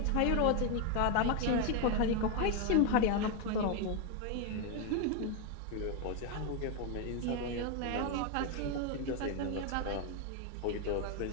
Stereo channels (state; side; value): different; both; correlation 0.01